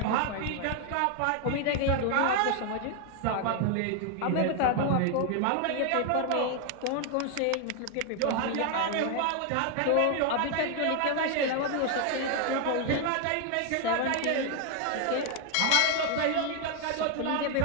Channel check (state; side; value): different; both; correlation 0.00